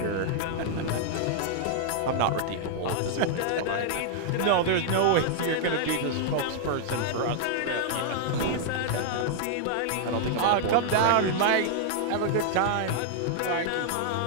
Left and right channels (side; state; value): both; different; correlation -0.01